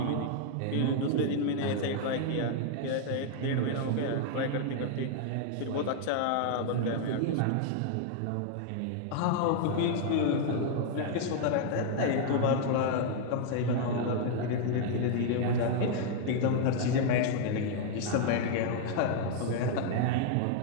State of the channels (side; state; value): both; different; correlation 0.00